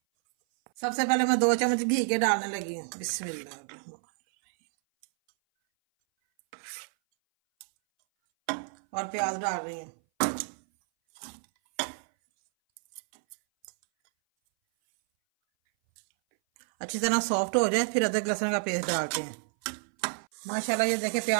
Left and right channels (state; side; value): silent; left; 59 dB below the other